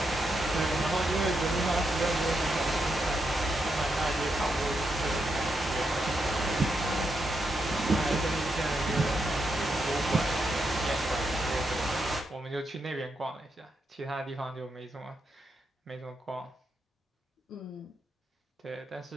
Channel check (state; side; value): normal; both; correlation 0.83